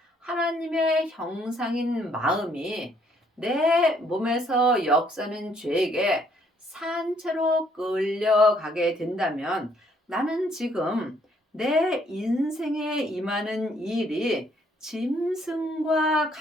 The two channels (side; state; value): both; normal; correlation 0.67